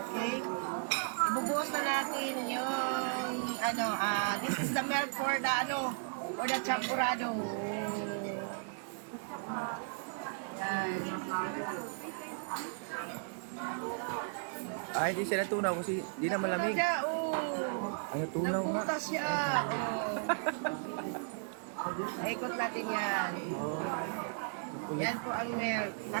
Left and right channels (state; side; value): silent; left; 54 dB below the other